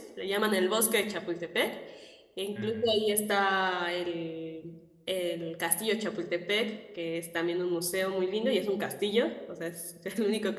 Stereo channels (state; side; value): identical; both; correlation 1.00